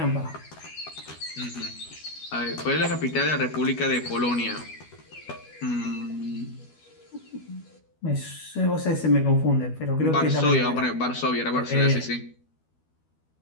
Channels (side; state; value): right; late; 12 ms